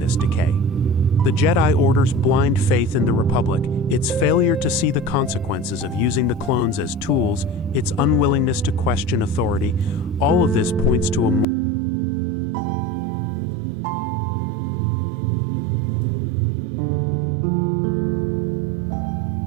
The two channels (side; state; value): left; drops out; at 11.5 s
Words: decay. The Jedi Order's blind faith in the Republic, its failure to see the consequences of using the clones as tools, its unwillingness to question authority, all of this points to a moral failure. The Jedi become so caught up in their own ideological purity that they fail to see the human cost of their actions.